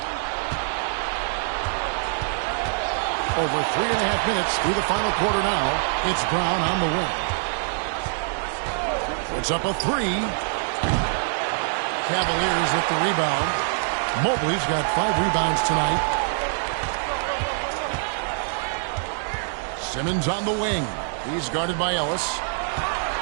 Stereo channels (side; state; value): left; silent; digital silence